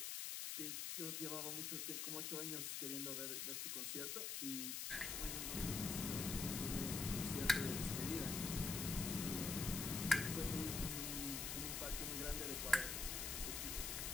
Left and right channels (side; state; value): left; noise; hiss, 2 dB below the sound